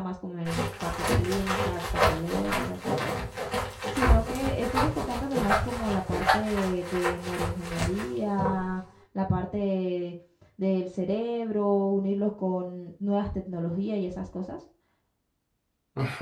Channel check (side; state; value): both; identical; correlation 1.00